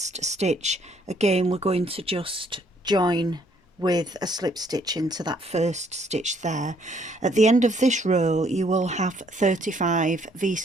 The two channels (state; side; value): normal; both; correlation 0.66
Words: stitch, again we're going to just join with a slip stitch into that first stitch there. At the end of this row you will have 35